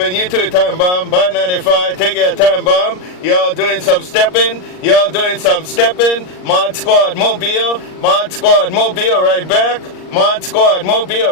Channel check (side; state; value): right; late; 39 ms